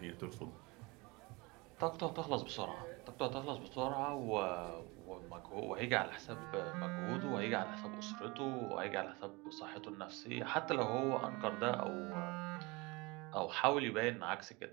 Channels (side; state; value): left; quieter; 25.4 dB